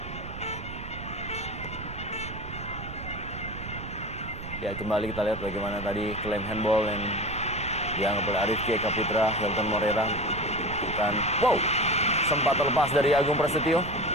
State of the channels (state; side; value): noise; right; rumble, 10 dB below the sound